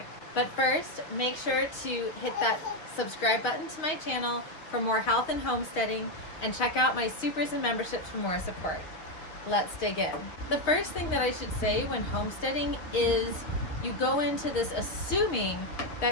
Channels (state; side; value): late; right; 6.4 ms